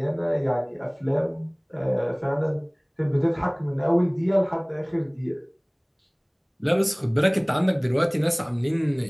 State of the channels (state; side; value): identical; both; correlation 1.00